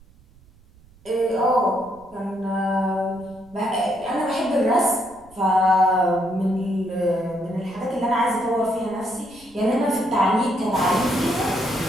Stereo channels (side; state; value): right; noise; rumble, 27 dB below the sound